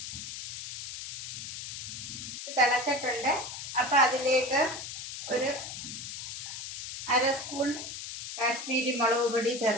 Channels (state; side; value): noise; left; hiss, 8 dB below the sound